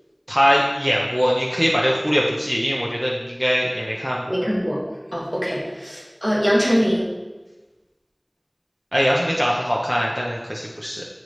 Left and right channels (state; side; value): identical; both; correlation 1.00